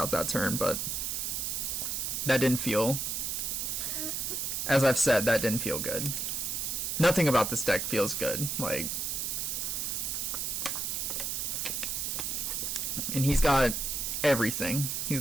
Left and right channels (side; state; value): right; noise; hiss, 1 dB below the sound